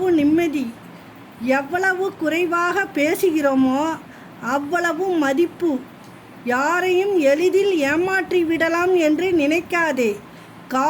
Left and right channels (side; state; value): both; identical; correlation 1.00